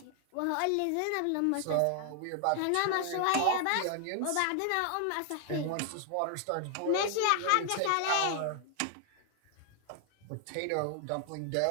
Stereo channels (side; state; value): both; different; correlation 0.00